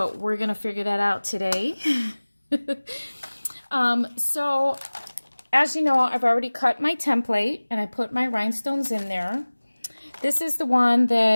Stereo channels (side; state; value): both; inverted; correlation -1.00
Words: we're going to figure that out today. So as you know, I've already cut my template and I put my rhinestones in there. This is the one